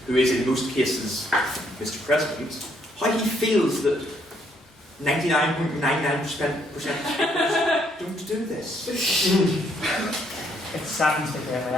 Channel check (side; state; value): both; normal; correlation 0.70